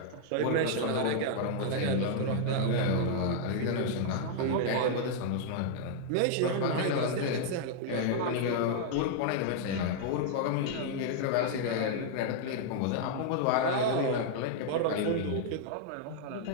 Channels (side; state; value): both; different; correlation -0.01